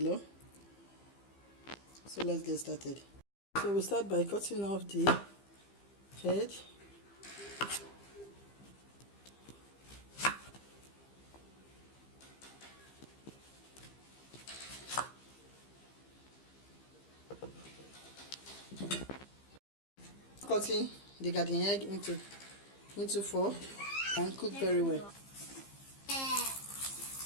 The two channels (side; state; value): right; late; 15 ms